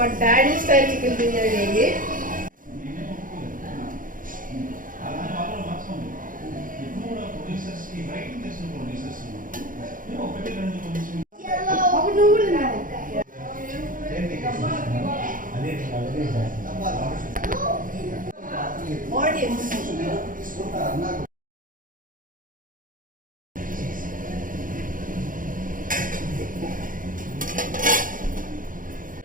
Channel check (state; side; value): late; left; 0.39 ms